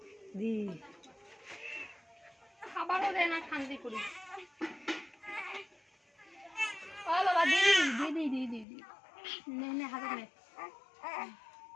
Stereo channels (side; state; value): right; drops out; at 8.7 s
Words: দি খাবারও দেয় না, খান্দি করি। ও বাবা দিদি দিদি দিদি দিদি নে নে হাতে নে।